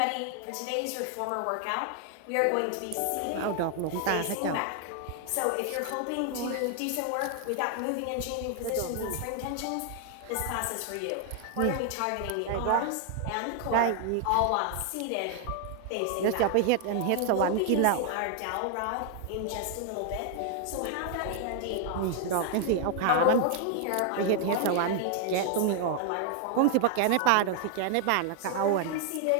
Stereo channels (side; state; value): both; different; correlation 0.00